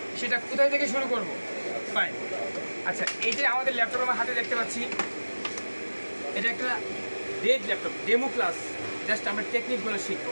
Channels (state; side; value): inverted; both; correlation -1.00